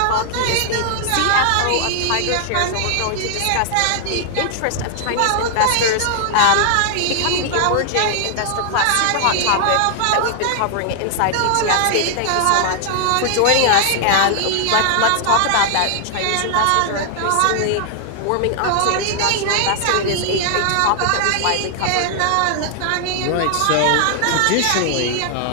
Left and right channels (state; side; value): different; both; correlation 0.00